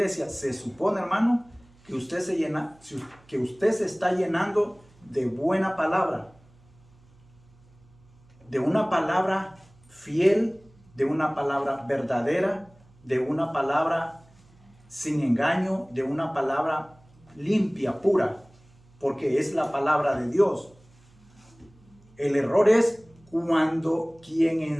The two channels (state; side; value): noise; right; hum, 29 dB below the sound